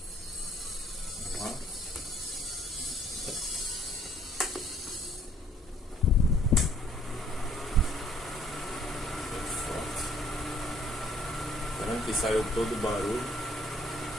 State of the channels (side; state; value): both; normal; correlation 0.61